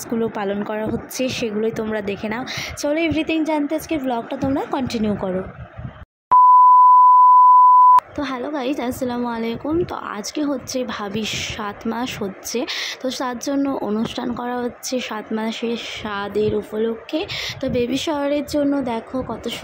পালন করা হচ্ছে সেগুলোই তোমরা দেখে নাও। চলো এভরিথিং জানতে আজকে ব্লগটা তোমরা কন্টিনিউ করো। তো হ্যালো গাইজ, আসসালামু আলাইকুম। তো আজকে হচ্ছে ভাবির 7 মাস হচ্ছে, তো তার জন্য অনুষ্ঠান করা হচ্ছে 7 মাসের স্বাদের উপলক্ষে। তো বেবি শাওয়ারের জন্য দেখো কত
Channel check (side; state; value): both; identical; correlation 1.00